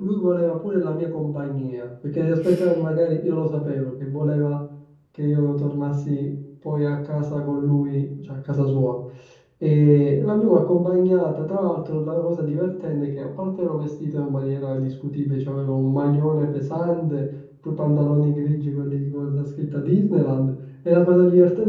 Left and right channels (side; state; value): both; identical; correlation 1.00